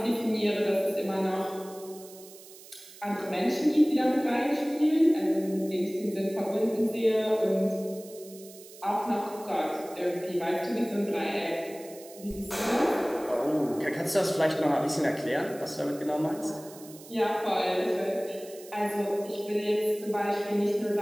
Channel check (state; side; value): noise; right; hiss, 19 dB below the sound